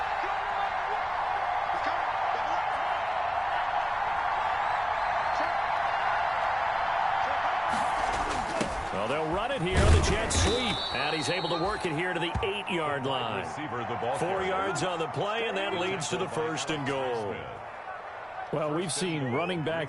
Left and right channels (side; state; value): both; identical; correlation 1.00